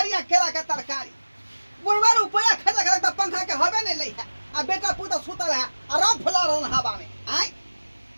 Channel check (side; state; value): both; inverted; correlation -1.00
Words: केला के तरकारी बुढ़वा रुपया खर्च करे तो पंखा के हवे नहीं लई है आ बेटा पुता सुतल है आराम फुला रहन हवा में आई